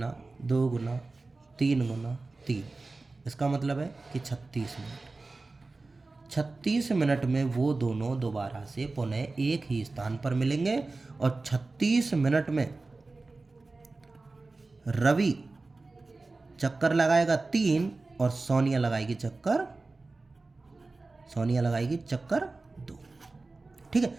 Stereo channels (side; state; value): left; quieter; 3.5 dB